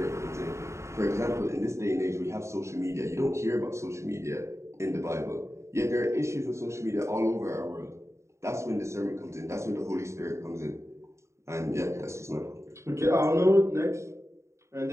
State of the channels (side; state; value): left; late; 0.14 ms